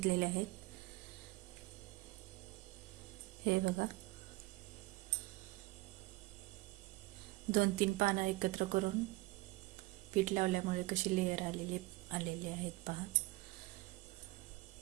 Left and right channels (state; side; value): quieter; left; 20.8 dB